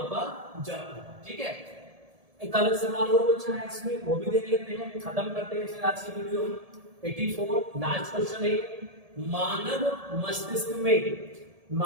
जाता है। ठीक है, एक अलग सवाल और बचा है इसमें, वो भी देख लेते हैं, खत्म करते हैं फिर आज की वीडियो। 84 लास्ट क्वेश्चन है,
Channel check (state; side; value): late; left; 1.7 ms